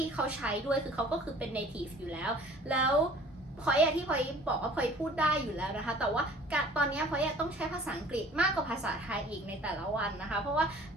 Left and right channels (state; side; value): normal; both; correlation 0.49